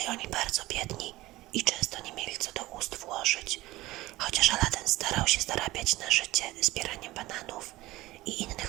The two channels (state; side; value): quieter; left; 18.3 dB